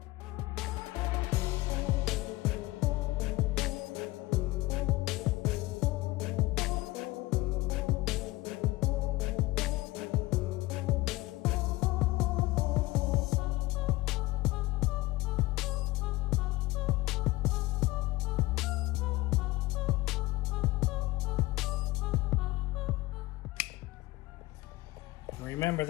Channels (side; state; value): right; quieter; 19.4 dB